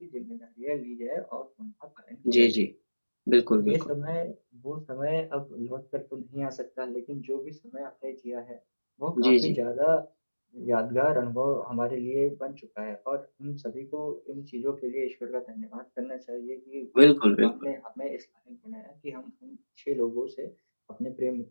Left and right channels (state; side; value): inverted; both; correlation -1.00